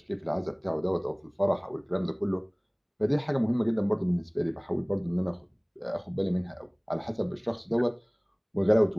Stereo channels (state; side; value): identical; both; correlation 1.00